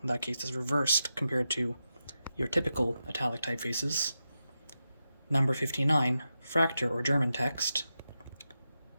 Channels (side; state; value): both; inverted; correlation -0.89